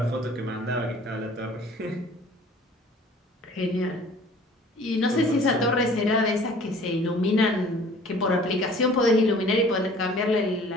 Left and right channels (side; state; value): both; normal; correlation 0.50